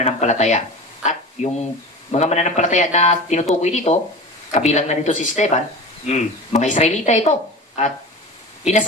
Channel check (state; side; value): normal; both; correlation 0.32